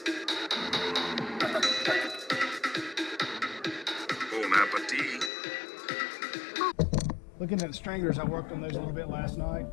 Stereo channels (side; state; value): right; drops out; at 5.3 s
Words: Looking at the stringers, I worked on those a little bit last night.